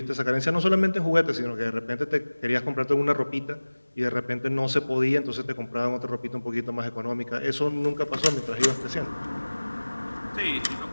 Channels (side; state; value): both; inverted; correlation -1.00